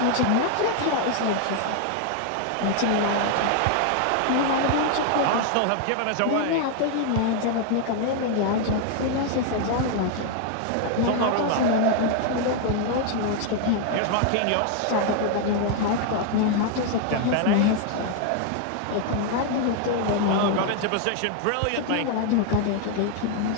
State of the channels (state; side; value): different; both; correlation 0.00